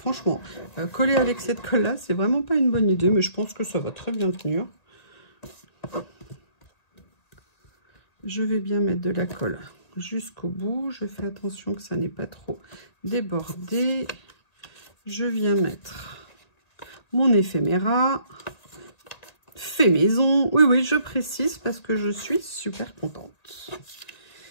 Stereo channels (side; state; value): right; late; 1.9 ms